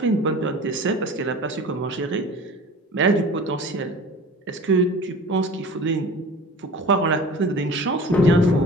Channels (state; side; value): normal; both; correlation 0.40